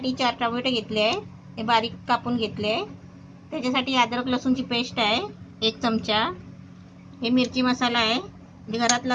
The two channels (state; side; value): identical; both; correlation 1.00